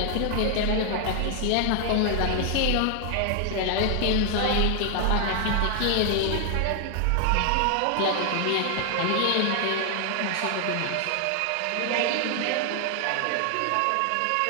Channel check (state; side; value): different; both; correlation 0.00